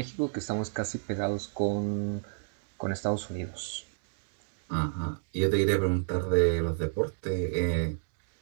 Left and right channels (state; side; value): silent; left; digital silence